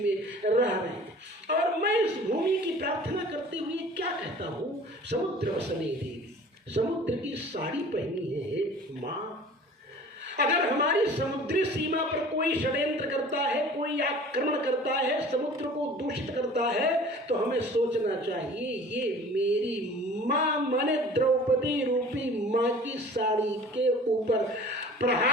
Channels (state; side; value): normal; both; correlation 0.45